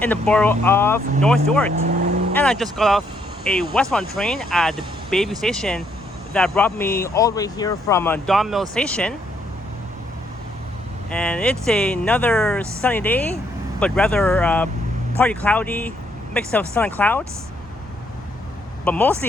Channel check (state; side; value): normal; both; correlation 0.72